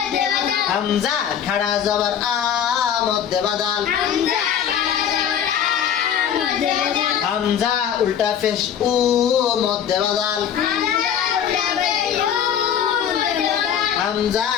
হামজা খাড়া জবর আ মধ্যে বদল, হামজা উল্টা পেশ উ মধ্যে বদল, হামজা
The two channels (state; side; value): quieter; right; 8.8 dB